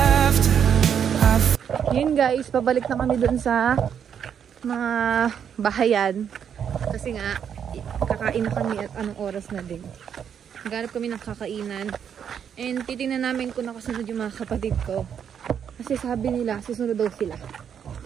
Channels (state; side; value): quieter; left; 8.1 dB